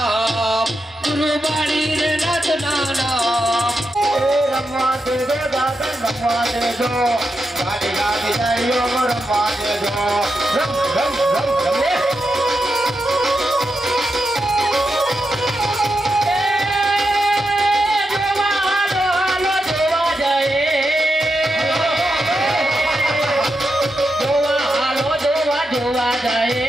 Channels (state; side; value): normal; both; correlation 0.86